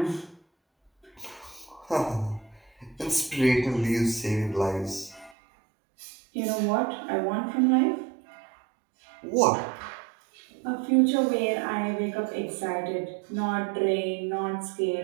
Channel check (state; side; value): drops out; left; at 5.4 s